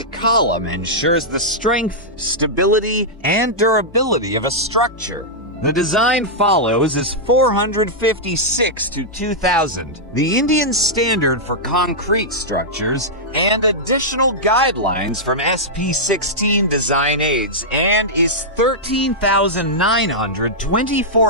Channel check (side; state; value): both; normal; correlation -0.08